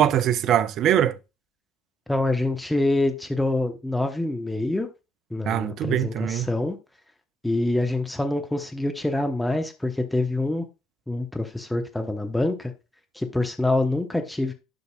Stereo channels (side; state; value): both; normal; correlation 0.77